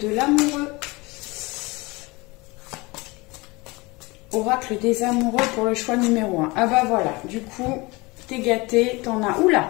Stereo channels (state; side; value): quieter; right; 24.2 dB